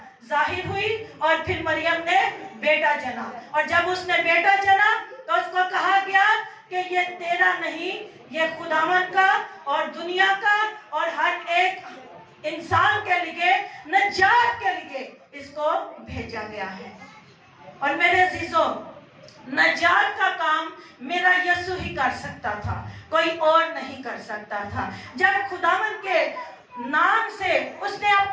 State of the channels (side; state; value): both; identical; correlation 1.00